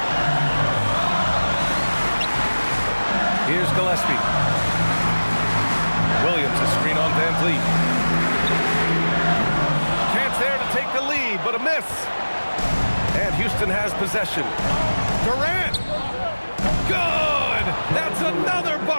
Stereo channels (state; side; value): inverted; both; correlation -1.00